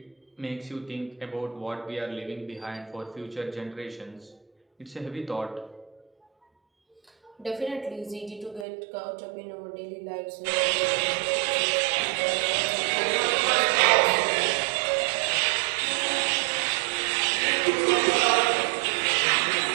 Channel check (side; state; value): left; drops out; at 8.7 s